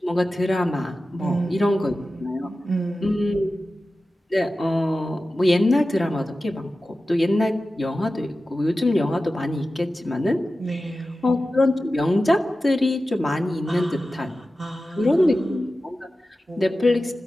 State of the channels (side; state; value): both; normal; correlation 0.94